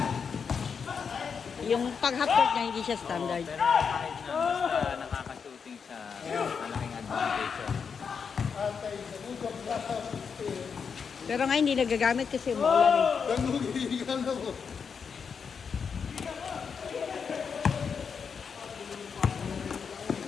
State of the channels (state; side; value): quieter; right; 6.2 dB